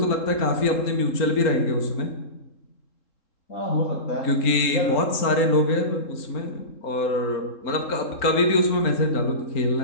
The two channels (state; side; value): late; right; 3.7 ms